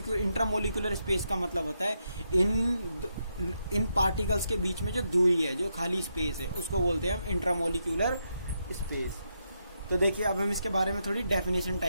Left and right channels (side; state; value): both; inverted; correlation -0.82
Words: space का मतलब होता है इन पार्टिकल्स के बीच में जो दूरी है, जो खाली स्पेस है, उसको बोलते हैं हम इंट्रामोलिकुलर स्पेस। तो देखिए अब हम इसके बारे में थोड़ी डेफिनेशन